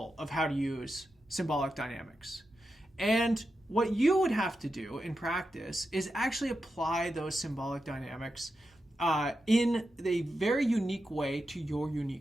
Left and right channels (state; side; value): normal; both; correlation 0.89